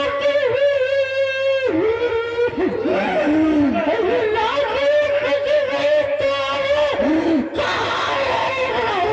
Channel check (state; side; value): identical; both; correlation 1.00